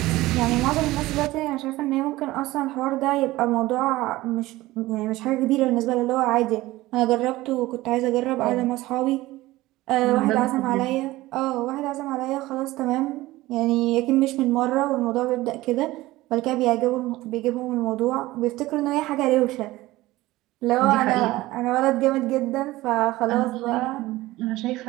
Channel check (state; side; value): quieter; left; 18.1 dB